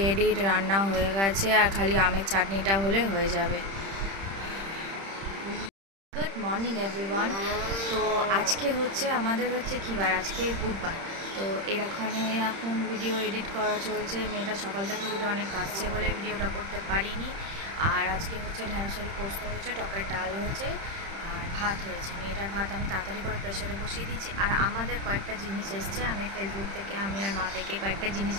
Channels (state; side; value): late; left; 31 ms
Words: এডিট, রান্না হয়ে গেছে আর খালি আমের চাটনিটা হলে হয়ে যাবে। Good morning everyone. তো আজকে হচ্ছে আমাদের কী বার, আজকে বুধবার। তো এখানে এখন ভিডিও এডিট করা চলছে। মেয়েটা সকাল থেকে উঠে অনেক কাশছে বলে ভিডিওটা করতে পারিনি। আর আজকে হচ্ছে ঢ্যাঁড়স আলু পোস্ত হয়েছে, টকের ডাল হয়েছে আর ভাত হয়েছে। মেয়েটার ভাত আমি তাড়াতাড়ি করে প্রেশারে বসিয়ে দিয়েছি। আর আমাদের কয়েকটা জিনিস এসছে, আমি ফেসবুক থেকে আমি আর মা থেকে কয়েকটা জিনিস